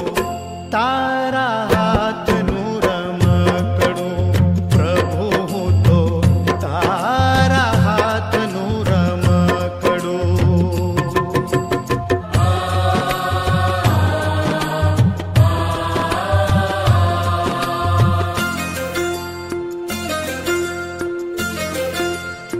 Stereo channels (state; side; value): identical; both; correlation 1.00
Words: तारा हाथ नूर मकड़ू प्रभु हूँ तो तारा हाथ नूर मकड़ू।